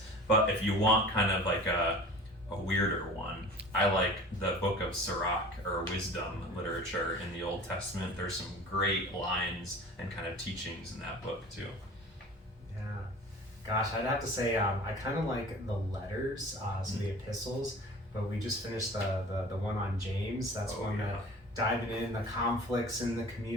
But if you want kind of like a weirder one, I like the book of Sirach, or wisdom literature in the Old Testament. There's some great lines and kind of teachings in that book too. Yeah. Gosh, I'd have to say I kind of like the letters, so the epistles, but we just finished the one on James. That's that diving in the conflicts in the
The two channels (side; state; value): both; normal; correlation 0.41